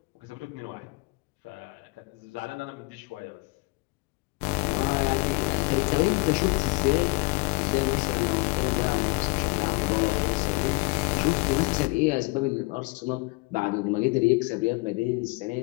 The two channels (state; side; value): quieter; right; 26.0 dB